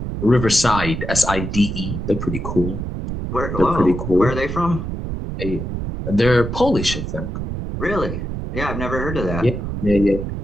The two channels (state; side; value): noise; right; rumble, 5 dB below the sound